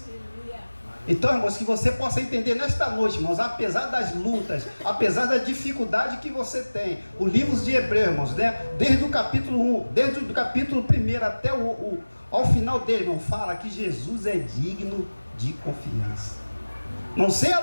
Então, irmãos, que você possa entender nesta noite, irmãos, apesar das lutas, apesar da dificuldade que você tem, o livro de Hebreus, irmãos, né, desde o capítulo 1, desde o capítulo 1 até ao final dele, irmão, fala que Jesus é digno de confiança. Não sei a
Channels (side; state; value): both; inverted; correlation -1.00